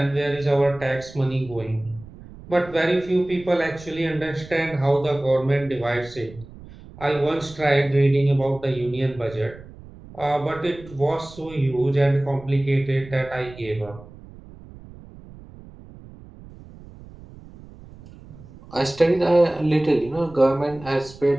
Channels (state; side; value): noise; right; rumble, 19 dB below the sound